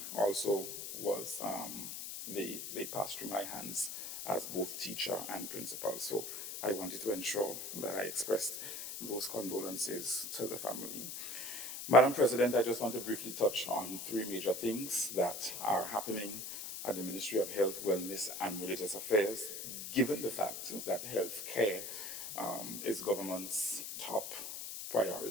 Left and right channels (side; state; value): left; noise; hiss, 7 dB below the sound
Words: also was, they passed through my hands as both teacher and principal. So I wanted to ensure that I expressed those condolences to the family. Madam President, I just want to briefly touch on 3 major things that are happening at the Ministry of Health, Wellness and Religious Affairs, given the fact that health care is government's top